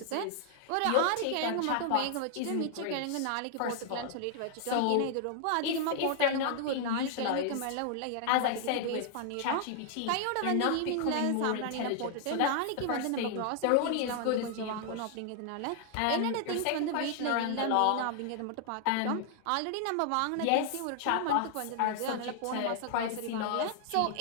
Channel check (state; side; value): different; both; correlation 0.00